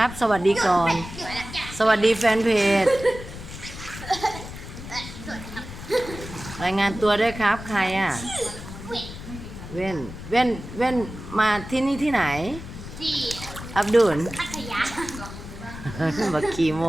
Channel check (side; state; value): left; noise; rumble, 12 dB below the sound